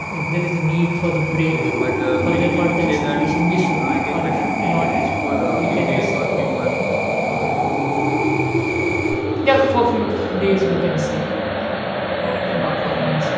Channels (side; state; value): both; identical; correlation 1.00